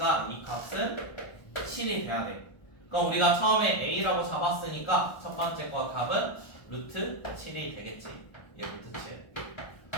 이 값은 7이 돼야 돼. 그럼 우리가 처음에 a라고 잡았으니까 첫 번째 거 답은 루트 7이 되겠지. 얘 루트 7.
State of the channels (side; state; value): right; late; 1.2 ms